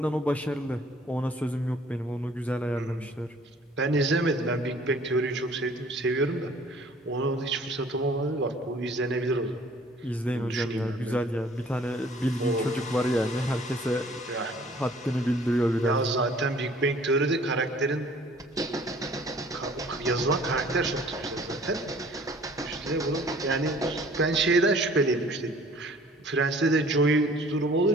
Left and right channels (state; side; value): normal; both; correlation 0.54